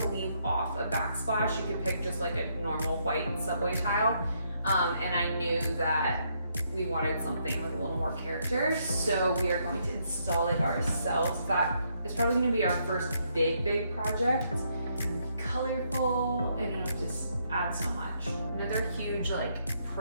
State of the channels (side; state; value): both; inverted; correlation -0.74